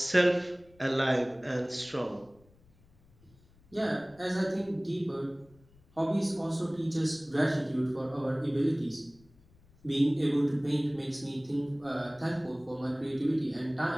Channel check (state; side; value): noise; left; rumble, 29 dB below the sound